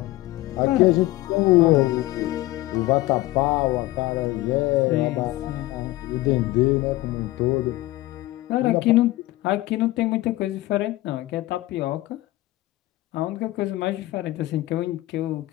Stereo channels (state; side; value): quieter; right; 17.6 dB